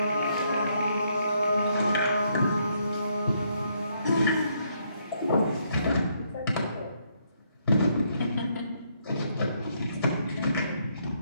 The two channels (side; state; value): both; inverted; correlation -0.73